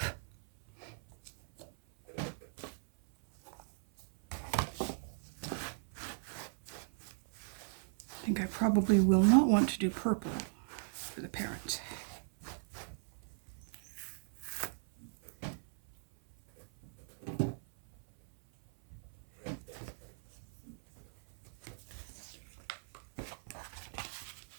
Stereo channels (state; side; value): silent; left; 53 dB below the other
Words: think I probably will not want to do purple for the parents.